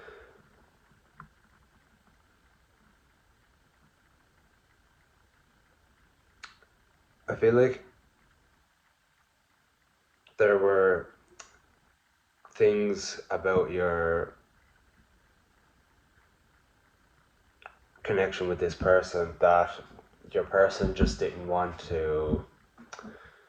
I feel like there were things about your connection with this person that your person just didn't want to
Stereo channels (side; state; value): both; identical; correlation 1.00